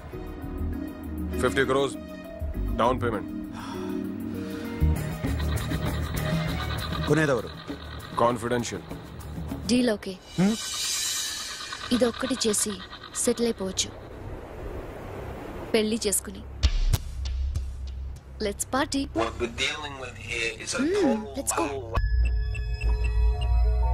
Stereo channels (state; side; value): identical; both; correlation 1.00